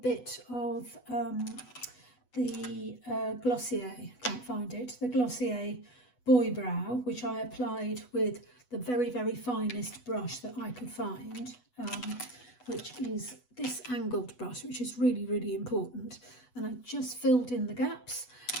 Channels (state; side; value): late; right; 8.1 ms